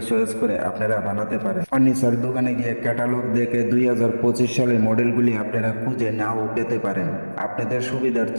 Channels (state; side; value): inverted; both; correlation -1.00